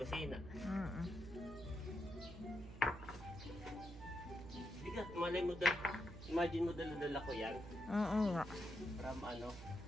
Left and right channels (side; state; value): right; noise; hum, 13 dB below the sound